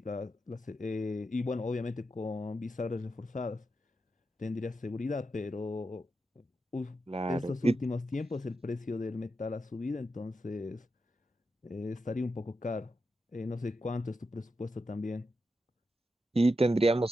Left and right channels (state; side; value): normal; both; correlation 0.87